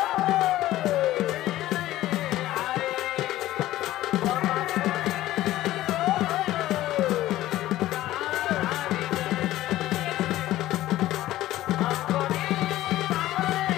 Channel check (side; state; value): right; quieter; 15.1 dB